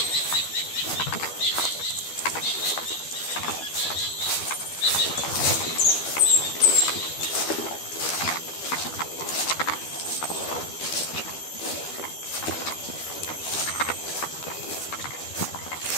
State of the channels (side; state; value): right; late; 12 ms